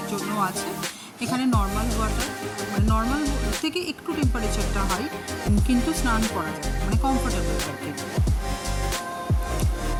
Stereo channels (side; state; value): both; identical; correlation 1.00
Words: জন্য আছে। এখানে নর্মাল ওয়াটার, মানে নর্মাল থেকে একটু টেম্পারেচারটা হাই, কিন্তু স্নান করা যায়, মানে কমফোর্টেবল আর কি।